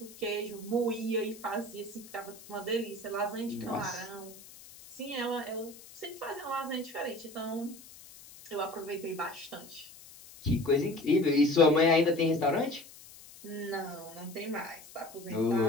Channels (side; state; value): left; noise; hiss, 19 dB below the sound